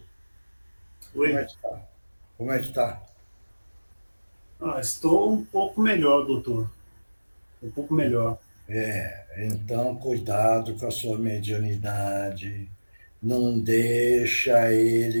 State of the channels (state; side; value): inverted; both; correlation -1.00